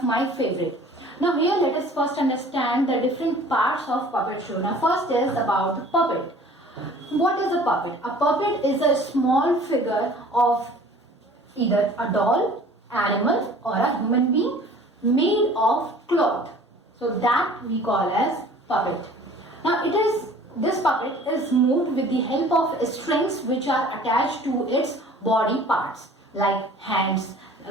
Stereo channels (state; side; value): normal; both; correlation 0.48